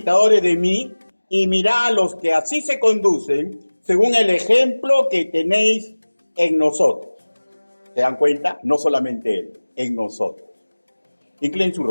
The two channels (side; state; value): both; inverted; correlation -1.00